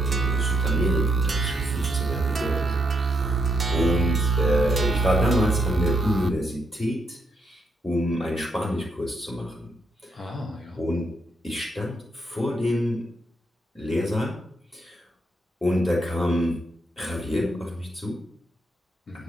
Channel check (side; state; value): both; normal; correlation 0.77